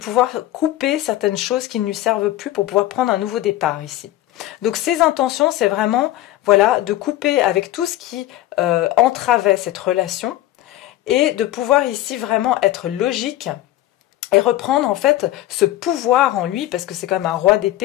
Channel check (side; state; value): right; quieter; 14.8 dB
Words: couper certaines choses qui ne lui servent plus pour pouvoir prendre un nouveau départ ici. Donc ses intentions, c'est vraiment de couper avec tout ce qui entravait cette relation et de pouvoir ici vraiment être logique et reprendre en fait ce pouvoir en lui, parce que c'est quand même un roi